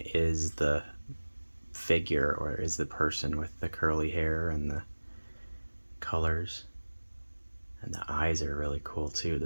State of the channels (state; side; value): inverted; both; correlation -1.00